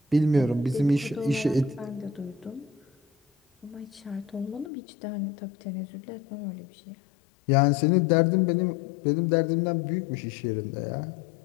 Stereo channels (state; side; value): drops out; right; at 4.7 s